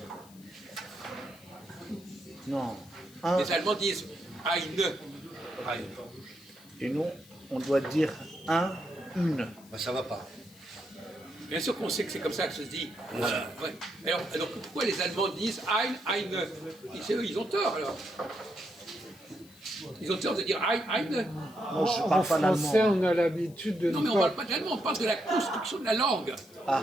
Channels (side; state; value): left; noise; hiss, 24 dB below the sound